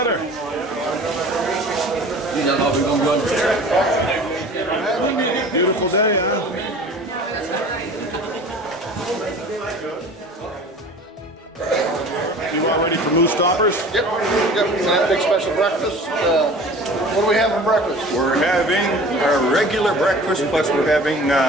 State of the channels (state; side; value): normal; both; correlation 0.42